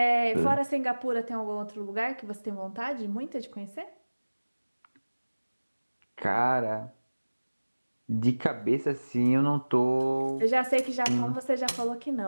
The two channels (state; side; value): inverted; both; correlation -1.00